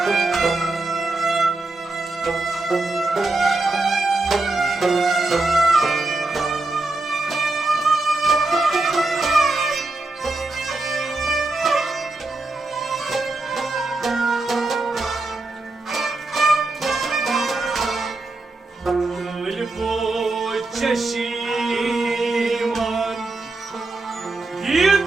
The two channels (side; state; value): left; quieter; 3.1 dB